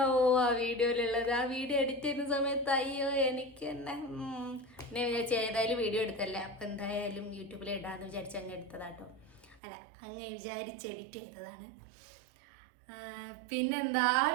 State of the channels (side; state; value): left; drops out; at 9.6 s